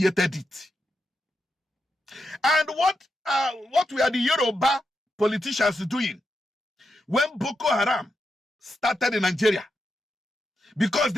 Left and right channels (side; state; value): both; normal; correlation 0.85